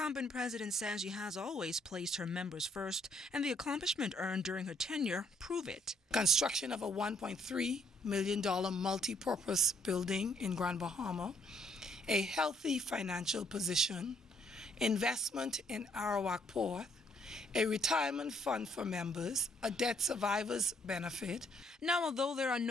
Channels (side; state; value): both; normal; correlation 0.68